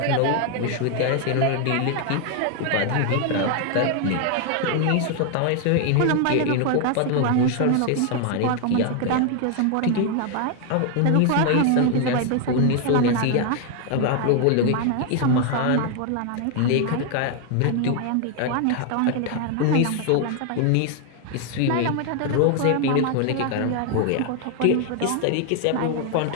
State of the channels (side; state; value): both; different; correlation 0.00